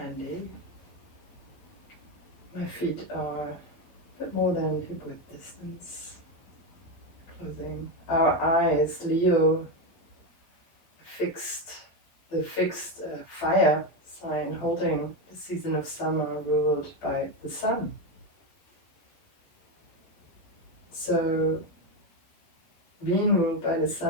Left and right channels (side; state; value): right; late; 11 ms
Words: My feet are a bit more than hip width distance. Closing our eyes, Leo, the fixed fire sign holding the season of summer ruled by the sun. So being ruled by the